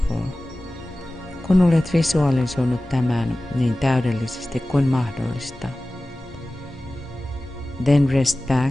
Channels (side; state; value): both; normal; correlation 0.97